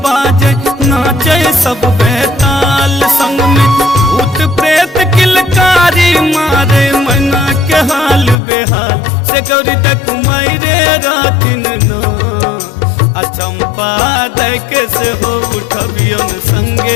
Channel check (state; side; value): drops out; right; at 8.3 s